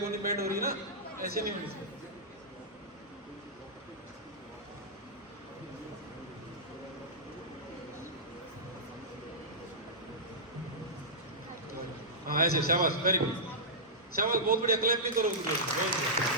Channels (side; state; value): both; normal; correlation -0.14